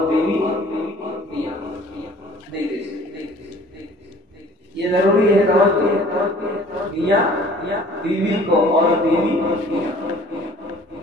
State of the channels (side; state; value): both; normal; correlation 0.51